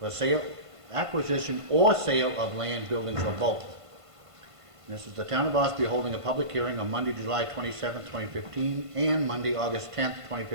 acquisition or sale of land, buildings, or both. And this is the town of Ossipee holding a public hearing on Monday, July 27th, 2015, and Monday, August 10th,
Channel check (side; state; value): left; late; 1.5 ms